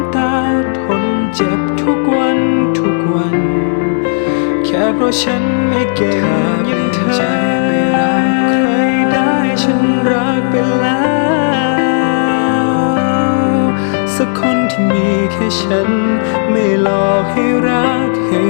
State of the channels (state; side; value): silent; right; digital silence